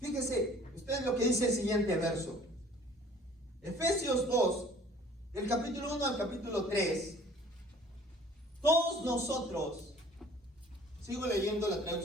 usted lo que dice el siguiente verso. Efesios 2, del capítulo 1 al capítulo 3. Todos nosotros, sigo leyendo la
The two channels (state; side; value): normal; both; correlation 0.52